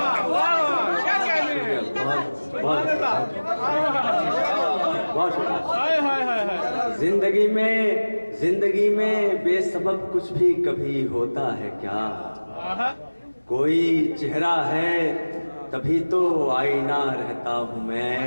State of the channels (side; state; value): both; inverted; correlation -1.00